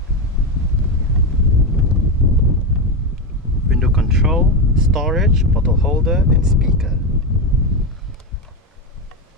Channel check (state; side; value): normal; both; correlation 0.13